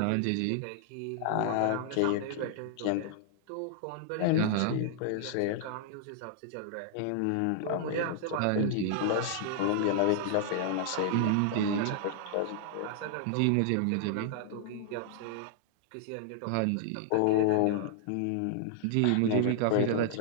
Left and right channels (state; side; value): different; both; correlation -0.01